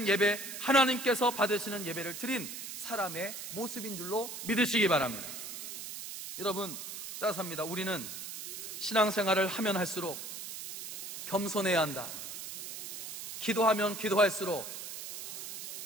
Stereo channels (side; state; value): right; noise; hiss, 8 dB below the sound